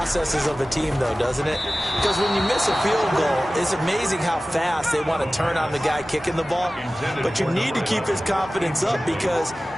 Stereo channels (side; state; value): both; normal; correlation 0.96